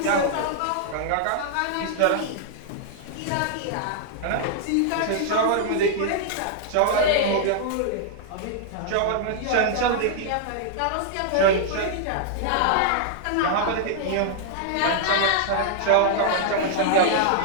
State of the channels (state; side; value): different; both; correlation -0.01